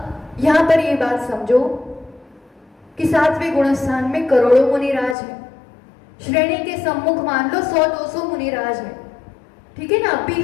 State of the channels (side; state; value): right; drops out; at 5.2 s